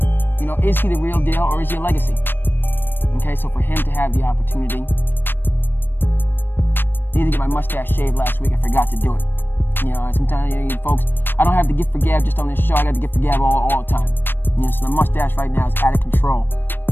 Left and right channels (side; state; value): right; late; 0.096 ms